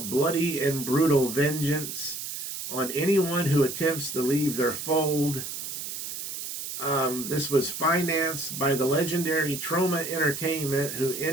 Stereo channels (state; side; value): noise; right; hiss, 7 dB below the sound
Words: bloody and brutal vengeance on anyone who attempts to leave their fold. This was financed by the legendary Troma Entertainment, who